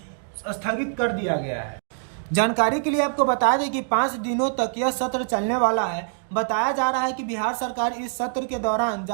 स्थगित कर दिया गया है। जानकारी के लिए आपको बता दें कि 5 दिनों तक यह सत्र चलने वाला है। बताया जा रहा है कि बिहार सरकार इस सत्र के दौरान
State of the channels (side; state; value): left; silent; digital silence